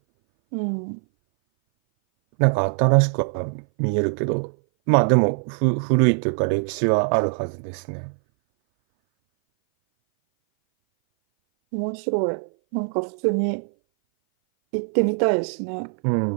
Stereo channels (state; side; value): silent; left; 58 dB below the other